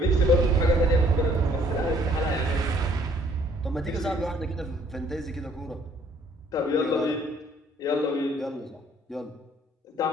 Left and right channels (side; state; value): both; normal; correlation 0.61